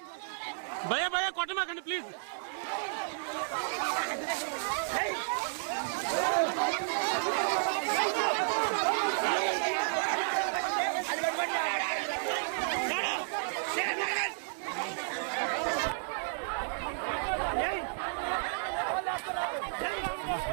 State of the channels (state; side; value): silent; left; digital silence